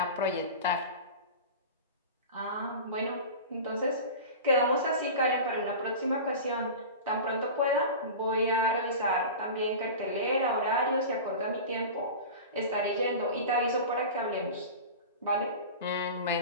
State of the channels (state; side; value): inverted; both; correlation -0.31